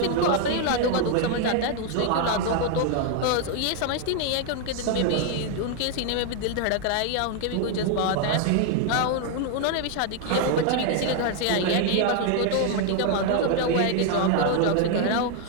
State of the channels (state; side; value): different; both; correlation 0.00